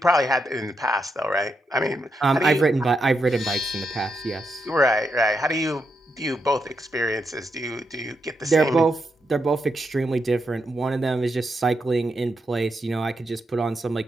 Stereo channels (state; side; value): normal; both; correlation 0.83